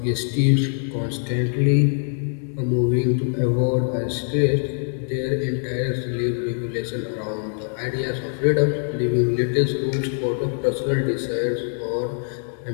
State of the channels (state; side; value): silent; right; digital silence